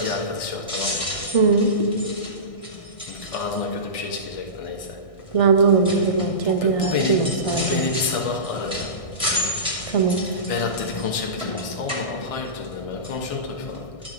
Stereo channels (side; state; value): right; late; 1.6 ms